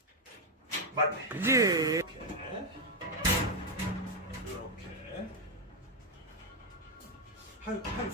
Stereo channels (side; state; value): both; normal; correlation 0.03